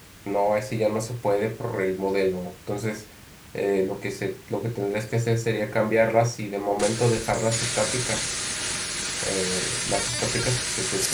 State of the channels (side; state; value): both; identical; correlation 1.00